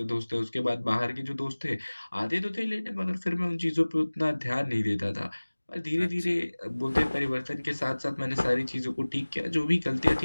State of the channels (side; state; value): both; inverted; correlation -1.00